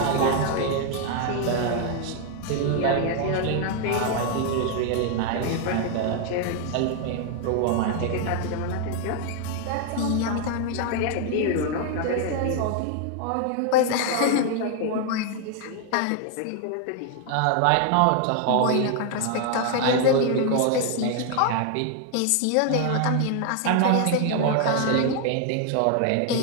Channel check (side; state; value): both; different; correlation 0.00